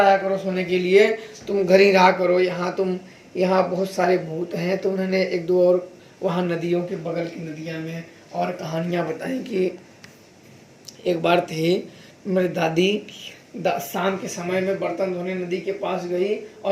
करो सोने के लिए, तुम घर ही रहा करो, यहाँ बहुत सारे भूत हैं। तो उन्होंने 1-2 और वहाँ नदियों के बगल की नदियाँ में और कहानियाँ बताई कि एक बार थे मेरी दादी शाम के समय में बर्तन धोने नदी के पास गई,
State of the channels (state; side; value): identical; both; correlation 1.00